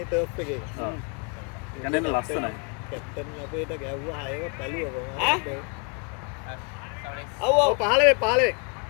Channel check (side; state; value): right; quieter; 36.0 dB